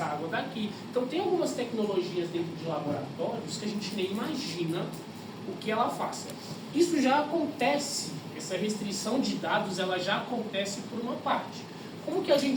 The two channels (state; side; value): identical; both; correlation 1.00